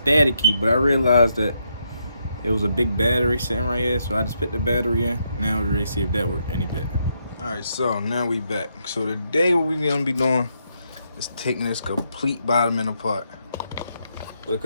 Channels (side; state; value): both; inverted; correlation -0.79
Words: but I realized that it was a big battery sitting right here, so I just put the battery in. Now we're ready to see if that worked any better. Alright, so now we back. So today what we're gonna be doing is taking this complete bottom end apart.